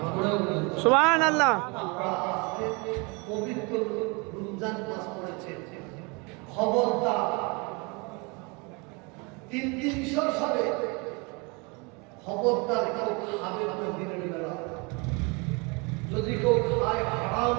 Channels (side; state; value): left; quieter; 29.7 dB